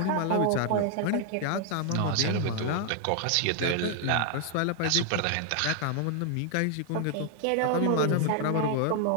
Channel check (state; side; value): different; both; correlation 0.00